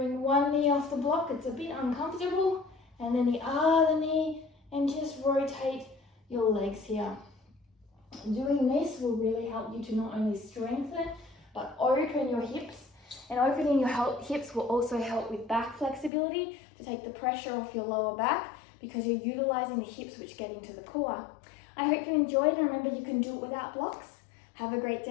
one knee off the block. It's a bit uncomfortable. And then the other knee, and just rotate your legs here. Doing this will really help you to not only strengthen, but open your hips. And opening your hips will also help with back flexibility to take the pressure off your lower back because you're utilizing the hips which get into the core. I hope you enjoyed, and remember you can do it without blocks. Have a great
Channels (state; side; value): drops out; right; at 16.1 s